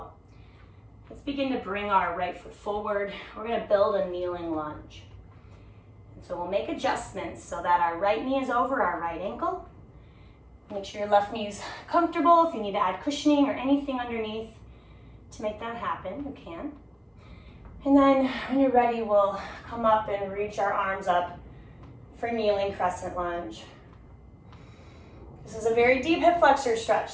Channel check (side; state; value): both; identical; correlation 1.00